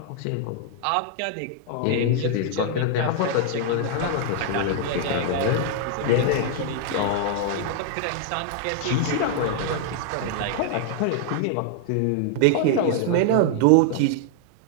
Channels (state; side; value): different; both; correlation 0.00